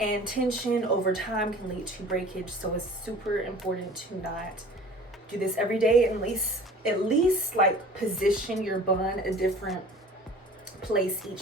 tension over time can lead to breakage. So it's super important to not do this every day, at least like position your bun a different place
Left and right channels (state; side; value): normal; both; correlation 0.44